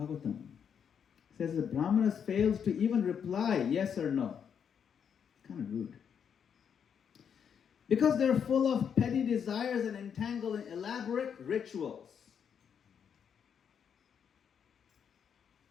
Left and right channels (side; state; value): right; quieter; 7.6 dB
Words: says the brahmanas failed to even reply yes or no. Kind of rude. Because they're full of petty desires and entangled in elaborate rituals.